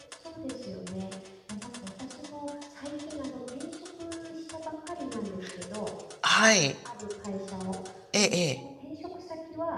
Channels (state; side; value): identical; both; correlation 1.00